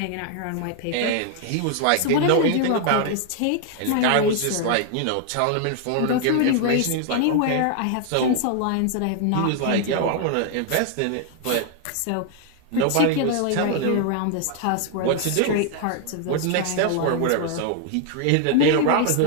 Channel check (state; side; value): different; both; correlation 0.00